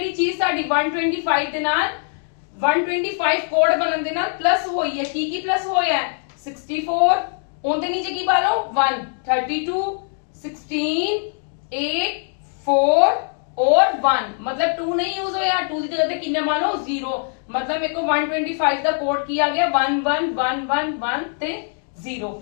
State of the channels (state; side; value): silent; right; 57 dB below the other